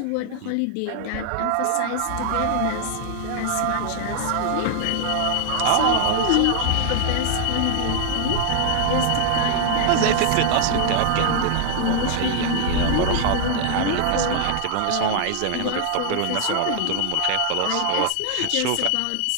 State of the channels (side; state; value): both; different; correlation 0.00